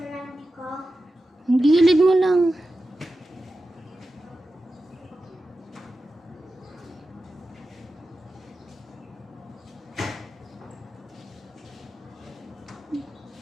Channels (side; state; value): both; normal; correlation 0.92